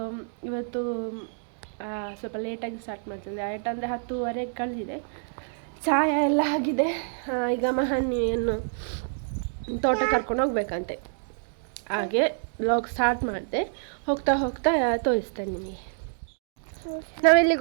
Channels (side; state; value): left; silent; digital silence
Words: ಇವತ್ತು ಸ್ವಲ್ಪ ಲೇಟಾಗಿ ಸ್ಟಾರ್ಟ್ ಮಾಡ್ತಿದ್ದೆ. ಅಂದರೆ 10:30 ಕಳೆದಿದೆ. ಚಾಯ ಎಲ್ಲ ಆಗಿದೆ. ಈಗ ಮಹನಿಯನ್ನು ತೋಟ ಕರ್ಕೊಂಡು ಹೋಗ್ಬೇಕಂತೆ, ಹಾಗೆ ವ್ಲಾಗ್ ಸ್ಟಾರ್ಟ್ ಮಾಡಿದೆ. ಹೋಗ್ತಾ ಹೋಗ್ತಾ ತೋರಿಸ್ತೇನೆ ನಿಮಗೆ.